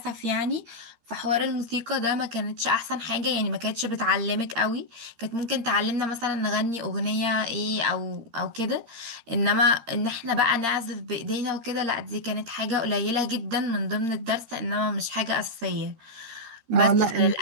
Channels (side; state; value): left; late; 13 ms